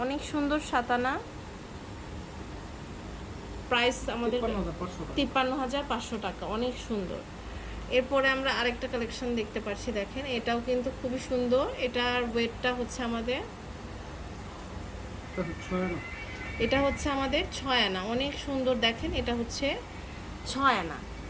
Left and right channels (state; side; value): identical; both; correlation 1.00